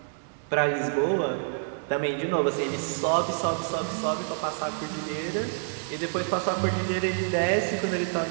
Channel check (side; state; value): left; silent; 58 dB below the other